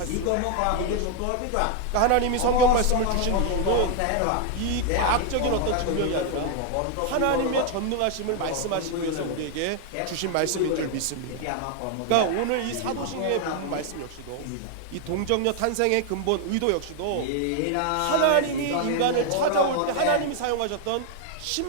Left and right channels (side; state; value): both; different; correlation 0.00